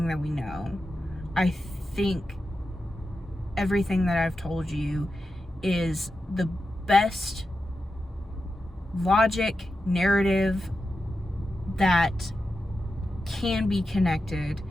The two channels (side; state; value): both; normal; correlation 0.90